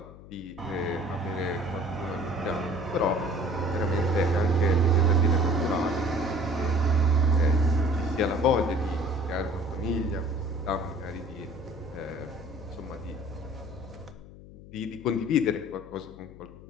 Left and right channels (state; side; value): noise; left; hum, 18 dB below the sound